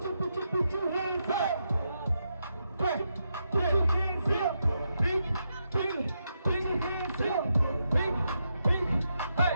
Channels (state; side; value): inverted; both; correlation -0.83